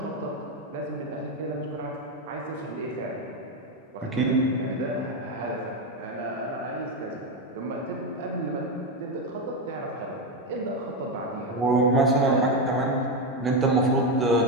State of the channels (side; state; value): both; normal; correlation 0.10